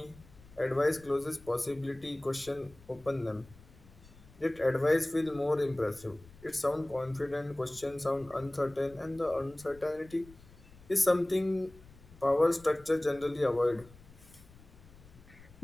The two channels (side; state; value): left; noise; rumble, 22 dB below the sound